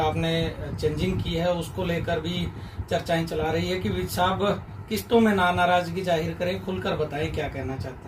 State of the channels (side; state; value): both; identical; correlation 1.00